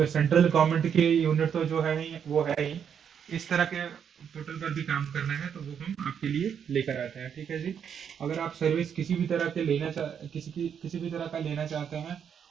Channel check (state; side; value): quieter; left; 7.9 dB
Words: central government के यूनिट तो जो है ही वो है ही, इस तरह के पोर्टल पर भी काम करना है, तो वो हम आपके लिए लेकर आते हैं, ठीक है जी। अगर आप सर्विस किसी भी तरह के किसी भी तरह का लेना चाहते हैं,